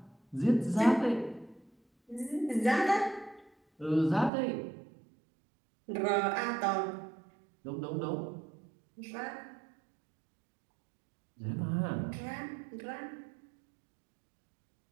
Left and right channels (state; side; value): drops out; left; at 4.3 s